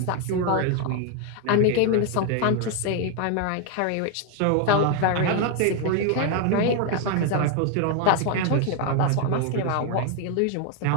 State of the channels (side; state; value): both; different; correlation 0.01